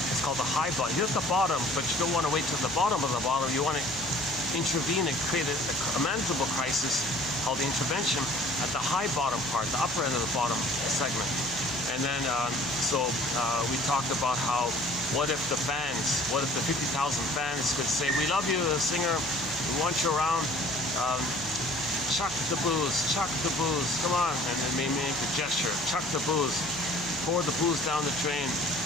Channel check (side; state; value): left; noise; hum, 19 dB below the sound